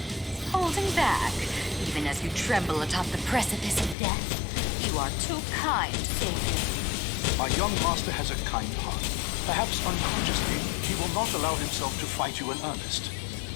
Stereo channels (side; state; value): right; drops out; at 4.0 s